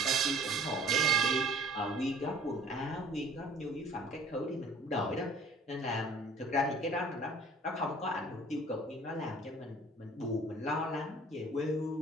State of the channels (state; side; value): normal; both; correlation 0.50